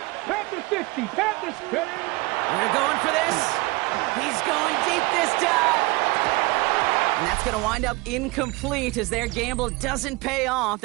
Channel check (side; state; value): left; quieter; 23.8 dB